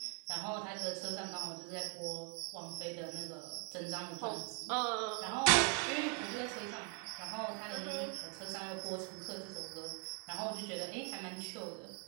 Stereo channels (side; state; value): left; quieter; 39.8 dB